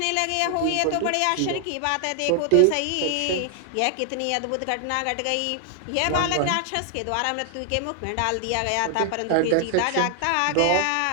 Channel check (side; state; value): both; different; correlation 0.00